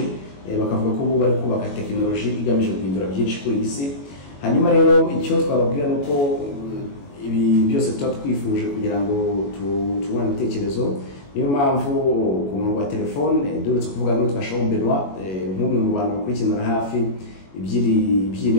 bakavuga ko bari kubaka tekinoloji igamije guhindura byinshi kuri isi. Hanyuma rero icyo twababwira nuko ibi byose tuba twifuje kugira ngo tubone ibitekerezo. Niyo mpamvu ku murongo wa telefone duretse kuvuga ngo twashaho Benoit nk'umwe mu bantu bakurikirana hafi iby'i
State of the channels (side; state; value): right; late; 21 ms